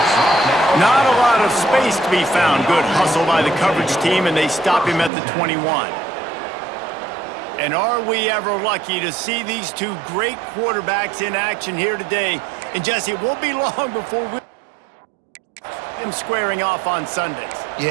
Not a lot of space to be found. Good hustle by the coverage team, and they stop him at the 21. And are we ever lucky to see these two great quarterbacks in action here today? And Jesse, it won't be long before we him squaring off on Sundays.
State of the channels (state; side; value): drops out; left; at 5.1 s